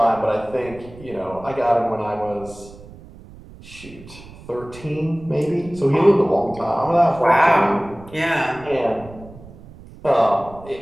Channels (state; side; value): noise; right; rumble, 19 dB below the sound